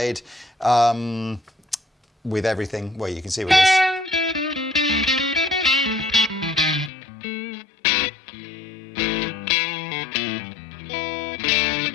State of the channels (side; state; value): right; drops out; at 6.9 s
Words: with everything. Well, you can see with this.